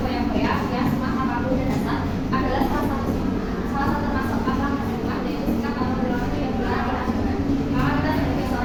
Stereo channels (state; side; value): identical; both; correlation 1.00